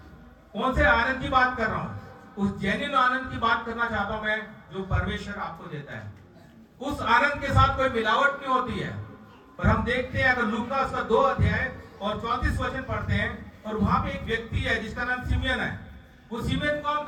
कौन से आनंद की बात कर रहा हूं? उस जेन्युइन आनंद की बात करना चाहता हूं मैं, जो परमेश्वर आपको देता है। उस आनंद के साथ कोई मिलावट नहीं होती है। और हम देखते हैं, अगर लूका उसका 2 अध्याय और 34 वचन पढ़ते हैं, और वहां पे एक व्यक्ति है जिसका नाम सिमियन है। वो सिमियन कौन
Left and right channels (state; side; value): identical; both; correlation 1.00